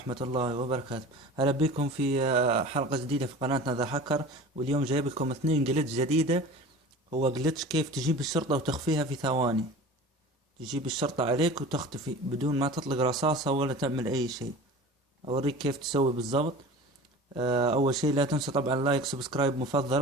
الله وبركاته. هلا بكم في حلقة جديدة في قناتنا ذا هاكر. واليوم جايب لكم اثنين جلتش جديدة. هو جلتش كيف تجيب الشرطة وتخفيها في ثواني. تجيب الشرطة عليك وتختفي بدون ما تطلق رصاصة ولا تعمل أي شيء. أوريك كيف تسوي بالضبط. أول شيء لا تنسوا طبعا لايك سبسكرايب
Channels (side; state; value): both; normal; correlation 0.38